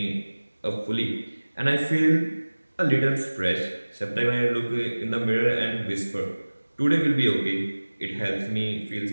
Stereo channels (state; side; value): inverted; both; correlation -1.00